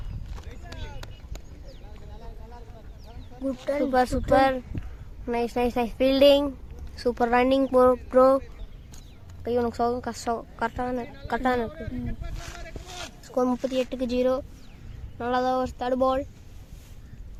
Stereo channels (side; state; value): both; identical; correlation 1.00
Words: Super super. Nice nice nice fielding. Super running bro. கை உனக்கு சோகம் கஷ்டம். கரெக்டான இருக்கு. ஸ்கோர் 38க்கு 0. நல்லாதான் ஒரு தேர்ட் பால்.